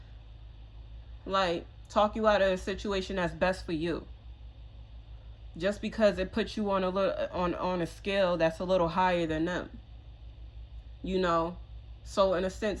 like talk you out of a situation that's best for you. Just because it puts you on a scale that's a little higher than them. You know? So in a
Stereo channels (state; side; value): identical; both; correlation 1.00